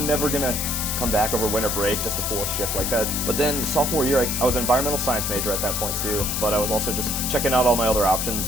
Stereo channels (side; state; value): left; noise; hiss, 1 dB below the sound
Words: never gonna come back over winter break just to pull a shift like that. But then sophomore year, I was an environmental science major at that point too, but I was also just checking out all my other options